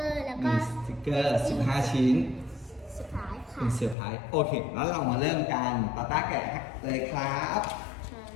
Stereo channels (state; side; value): drops out; right; at 4.0 s